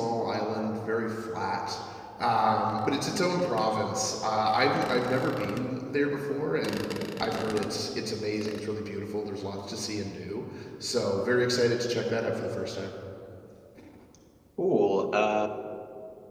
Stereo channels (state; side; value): identical; both; correlation 1.00